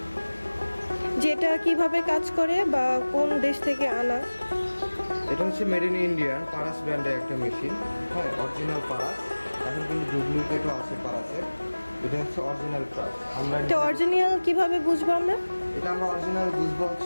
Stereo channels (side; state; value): both; inverted; correlation -1.00